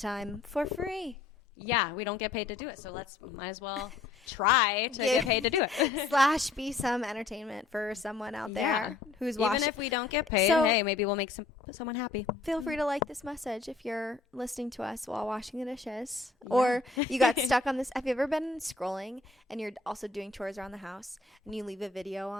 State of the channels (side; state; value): right; quieter; 4.1 dB